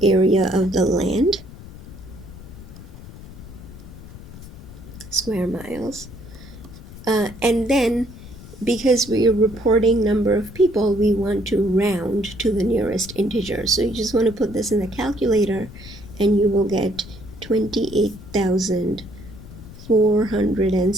area of the land, square miles, and then because we are reporting number of people, we want to round to the nearest integer. So you just want to put this in the calculator and you will get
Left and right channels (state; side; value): noise; left; rumble, 16 dB below the sound